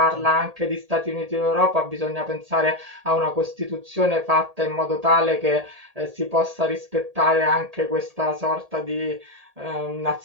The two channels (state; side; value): late; left; 1.8 ms